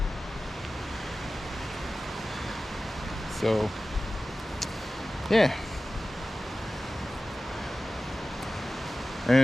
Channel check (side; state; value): both; normal; correlation 0.96